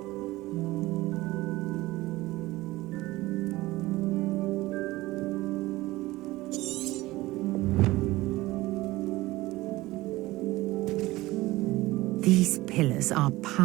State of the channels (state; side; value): quieter; left; 18.8 dB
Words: These pillars are